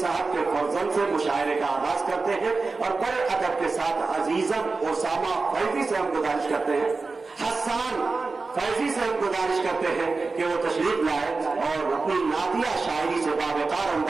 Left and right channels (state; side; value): quieter; left; 4.0 dB